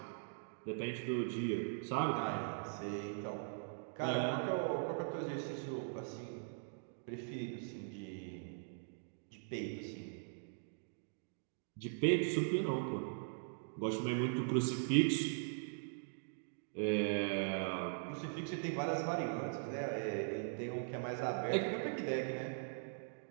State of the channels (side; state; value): left; silent; digital silence